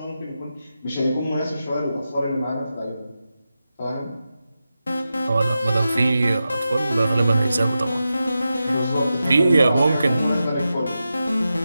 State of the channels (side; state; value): both; inverted; correlation -0.91